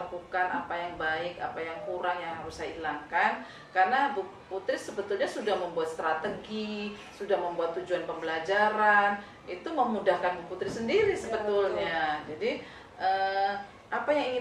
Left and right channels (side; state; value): both; identical; correlation 1.00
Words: apa yang baik, apa yang kurang yang harus saya hilangkan. Karena Bu Putri sebetulnya sudah membuat strategi, sudah membuat tujuan pembelajaran, itu memudahkan Bu Putri sendiri sebetulnya. Jadi apa yang